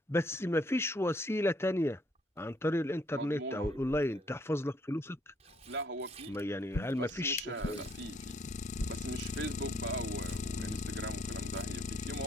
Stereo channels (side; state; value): both; normal; correlation 0.67